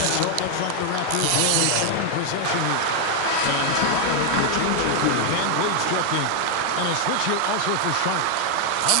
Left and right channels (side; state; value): both; different; correlation 0.00